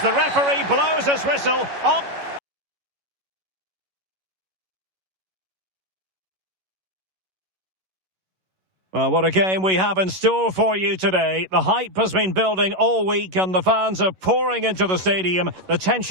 referee blows his whistle. On. Well, what a game we have in store for you today. The hype has been building all week and the fans are pouring into the stadium. The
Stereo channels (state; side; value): late; left; 11 ms